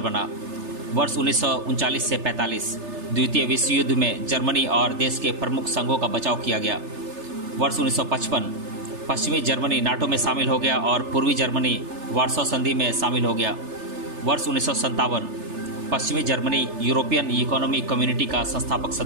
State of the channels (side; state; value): left; late; 3.3 ms